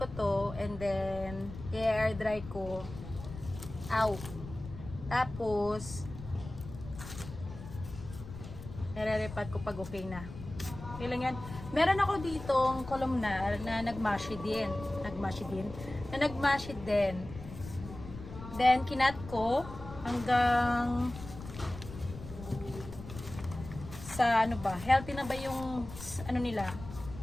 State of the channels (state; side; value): noise; left; rumble, 12 dB below the sound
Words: to and then i-air dry ko. Out. Tapos nare-repat ko pag okay na. Okay lang yan. Meron ako ditong columnar na nagmashi din. Na nagmashi din. Then kinat ko hanggang sa ano ba? Healthy na ba yung ano nila?